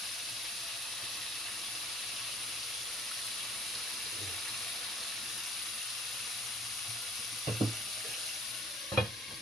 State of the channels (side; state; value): both; normal; correlation 0.54